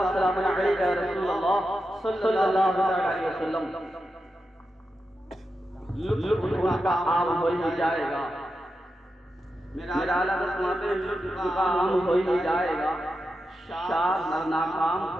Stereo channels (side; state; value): both; normal; correlation 0.89